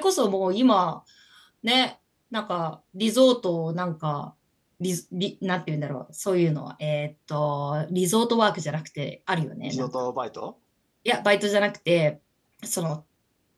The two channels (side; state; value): both; identical; correlation 1.00